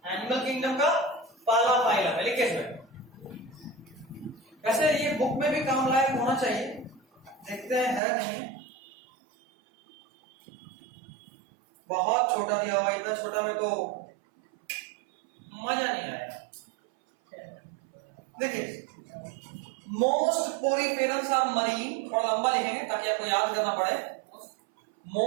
एनिमल किंगडम का पहला फाइलम है। लिखिए इसमें। वैसे ये बुक में भी काम लायक होना चाहिए, देखते हैं है नहीं। बहुत छोटा दिया हुआ, इतना छोटा में तो मजा नहीं आएगा। देखिए, मोस्ट पोरीफेरम्स आर मरीन। थोड़ा लंबा लिखेंगे ताकि आपको याद करना पड़े।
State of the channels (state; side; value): drops out; left; at 8.0 s